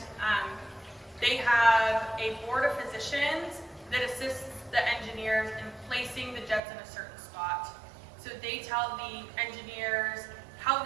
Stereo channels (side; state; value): left; drops out; at 6.6 s